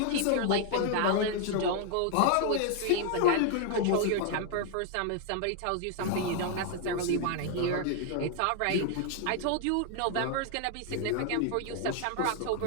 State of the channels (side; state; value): both; different; correlation 0.00